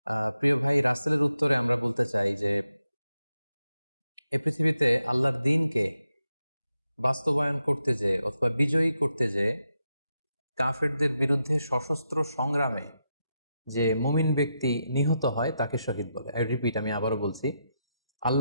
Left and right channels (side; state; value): both; inverted; correlation -0.85